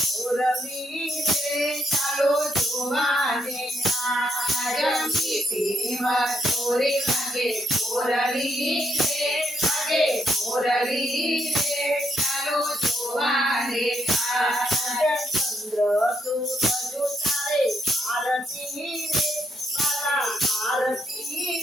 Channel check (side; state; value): both; normal; correlation 0.76